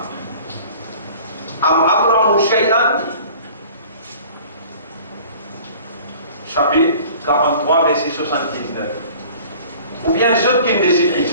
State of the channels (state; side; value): inverted; both; correlation -0.47